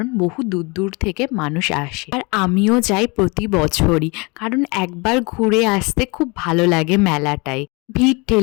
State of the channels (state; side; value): quieter; right; 27.9 dB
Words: বহু দূর দূর থেকে মানুষ আসে। আর আমিও যাই প্রতি বছরই, কারণ একবার ঘুরে আসতে খুব ভালো লাগে মেলাটায়। ভিড়